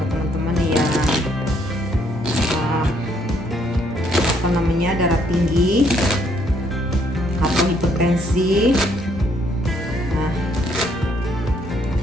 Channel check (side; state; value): both; normal; correlation 0.69